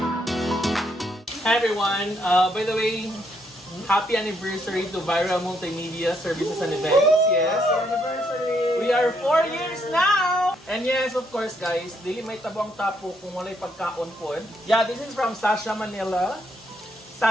Hi everyone! By the way, happy anniversary to Viral Multimedia Services and Events. Yes, anniversary! We are 4 years now! And yes, of course guys, dili may tabang tapo kung walay pagkaon po. Yeah, this is from Sasha Manila.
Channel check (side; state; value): both; normal; correlation 0.74